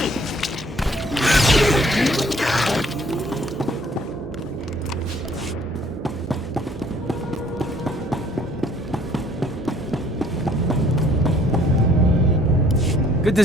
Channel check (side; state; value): both; normal; correlation 0.60